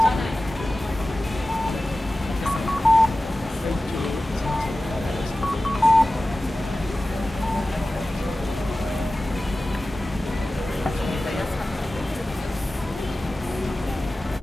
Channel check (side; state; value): both; normal; correlation 0.96